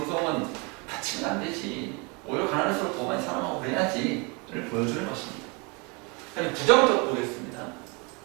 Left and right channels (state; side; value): quieter; left; 30.1 dB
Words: 다치면 안 되지. 오히려 가난할수록 더 많이 사랑하고 그래야지를 보여주는 것입니다. 그럼 부정적 보겠습니다.